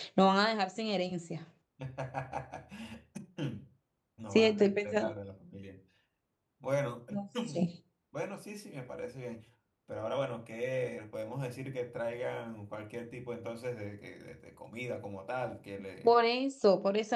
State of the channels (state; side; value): identical; both; correlation 1.00